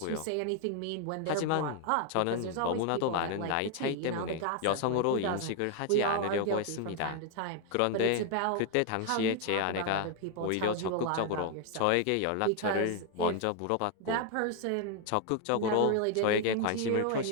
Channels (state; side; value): different; both; correlation 0.00